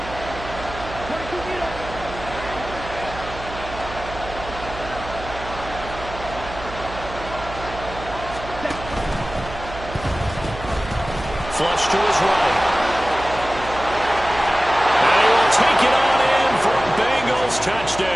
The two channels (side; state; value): right; noise; hum, 12 dB below the sound